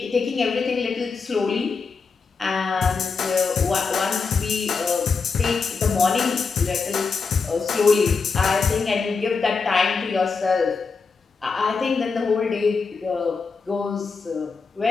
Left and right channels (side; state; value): right; quieter; 4.9 dB